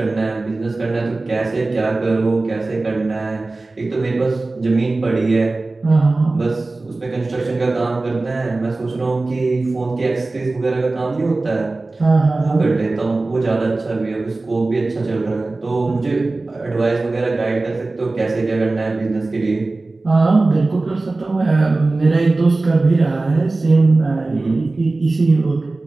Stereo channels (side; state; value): left; quieter; 3.3 dB